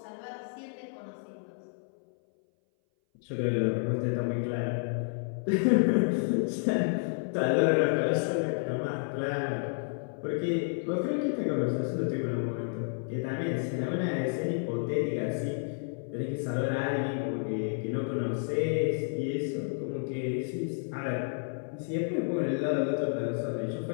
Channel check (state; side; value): silent; right; 57 dB below the other